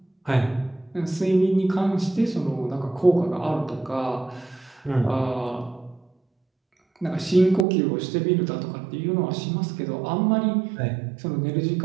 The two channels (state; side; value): drops out; left; at 7.7 s